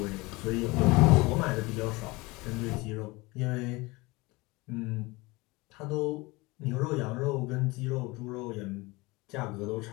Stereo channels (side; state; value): right; quieter; 23.4 dB